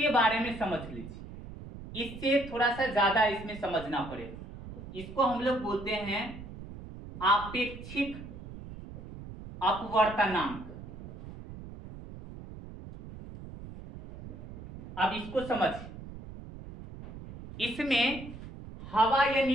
बारे में समझ लीजिए, इससे थोड़ा सा ज्यादा इसमें समझना पड़ेगा। इसको हम लोग बोलते हैं आपेक्षिक अपवर्तनांक। अब इसको समझिए, इसमें हवा या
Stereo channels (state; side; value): noise; right; rumble, 13 dB below the sound